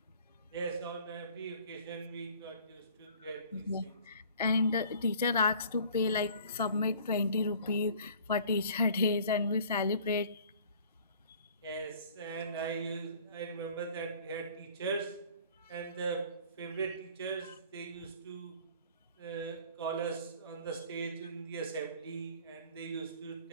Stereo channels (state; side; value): inverted; both; correlation -0.50